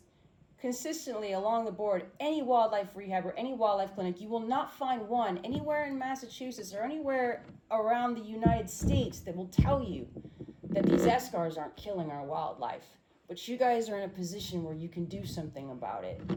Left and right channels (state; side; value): identical; both; correlation 1.00